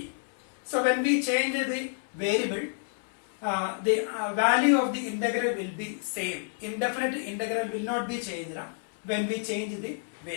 So when we change the variable, the value of the integral will be same. Indefinite integral will not be changed when we change the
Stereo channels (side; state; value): right; silent; 58 dB below the other